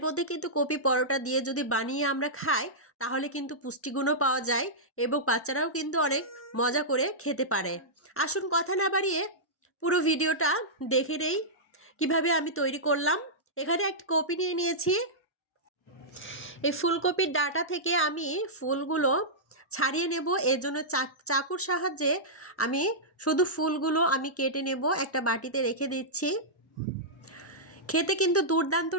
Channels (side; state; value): both; normal; correlation -0.12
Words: মধ্যে কিন্তু কপি পরোটা দিয়ে যদি বানিয়ে আমরা খাই, তাহলে কিন্তু পুষ্টিগুণও পাওয়া যায় এবং বাচ্চারাও কিন্তু অনেক মজা করে খেতে পারে। আসুন কথা না বাড়িয়ে পুরো ভিডিওটা দেখে নেই কীভাবে আমি তৈরি করলাম। এখানে একটা কপি নিয়ে নিয়েছি। এই ফুলকপির ডাঁটা থেকে আমি ফুলগুলো ছাড়িয়ে নেব। এর জন্য চাকুর সাহায্যে আমি শুধু ফুলগুলো আমি কেটে নেব। একটা বাটিতে রেখে দিচ্ছি। খেতে কিন্তু দুর্দান্ত